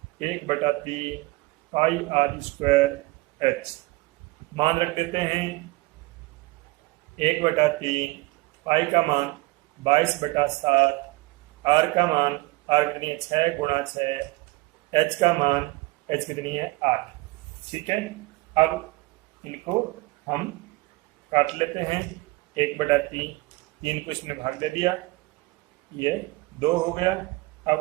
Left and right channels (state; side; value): quieter; left; 21.8 dB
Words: 1/3 पाई आर स्क्वायर एच। मान रख देते हैं 1/3, पाई का मान 22/7, आर का मान, आर कितनी है 6 × 6, एच का मान, एच कितनी है 8। ठीक है, अब इनको हम काट लेते हैं, 1/3, 3 को इसमें भाग दे दिया, ये 2 हो गया। अब